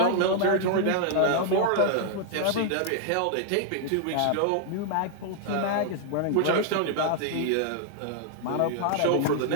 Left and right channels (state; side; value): different; both; correlation -0.01